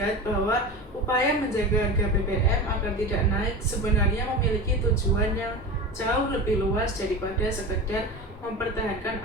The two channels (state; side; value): normal; both; correlation 0.28